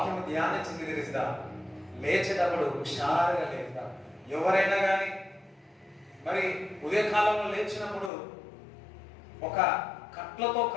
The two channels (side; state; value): right; drops out; at 8.1 s